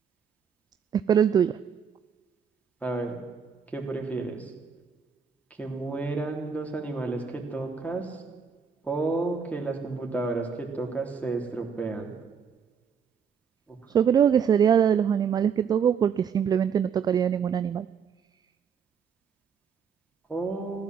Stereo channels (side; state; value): left; quieter; 6.9 dB